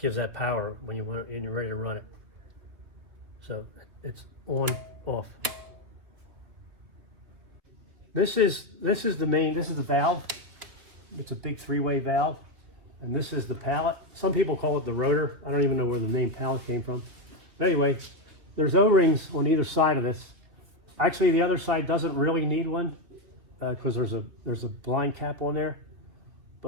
that power when you're ready to run it. So it's on, off. This is the valve. It's a big 3-way valve, and this is the pallet. Some people call it the rotor. I don't even know where the name pallet came from. But anyway, there's O-rings on either side of this. Actually, the other side doesn't really need one. because there's a blind cap on there,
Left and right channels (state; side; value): late; left; 3.3 ms